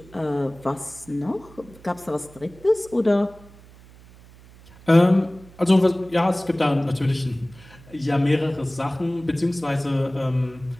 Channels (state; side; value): noise; right; hum, 23 dB below the sound